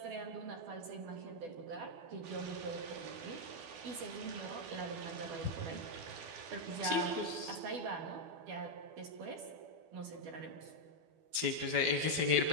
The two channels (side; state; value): left; late; 12 ms